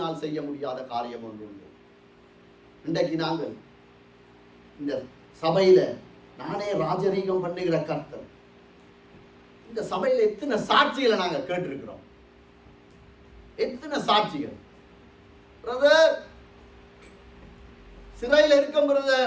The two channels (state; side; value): identical; both; correlation 1.00